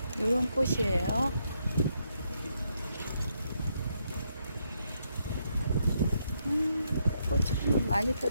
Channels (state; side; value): inverted; both; correlation -0.78